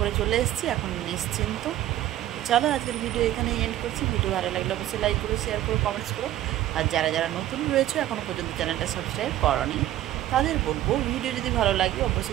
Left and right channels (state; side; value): quieter; left; 13.6 dB